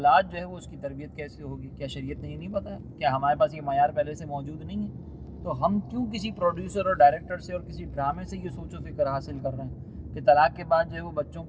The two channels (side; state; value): both; identical; correlation 1.00